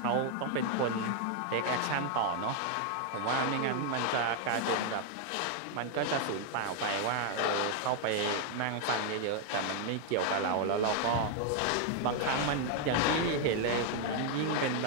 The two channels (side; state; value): both; different; correlation 0.00